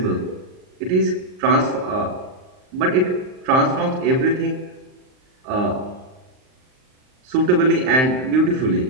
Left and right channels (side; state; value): left; late; 39 ms